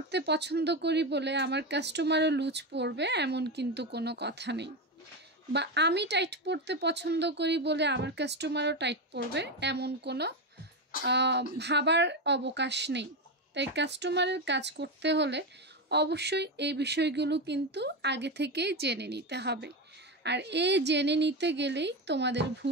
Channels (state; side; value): normal; both; correlation 0.14